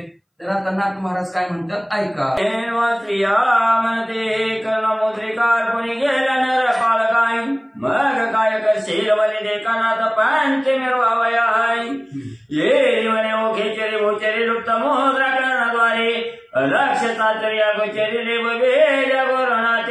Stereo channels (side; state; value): both; identical; correlation 1.00